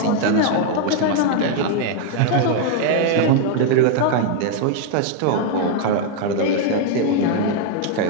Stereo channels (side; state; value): both; different; correlation 0.00